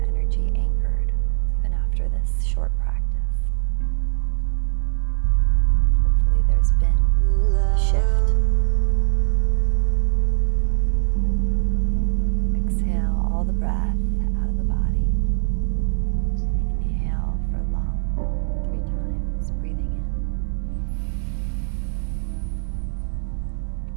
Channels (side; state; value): left; silent; digital silence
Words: energy anchored even after this short practice. Hopefully there's been a shift. Exhale all the breath out of the body. Inhale for long 3 times, breathing